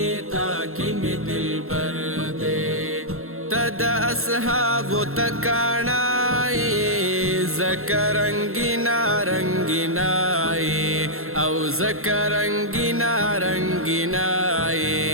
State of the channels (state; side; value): late; left; 0.62 ms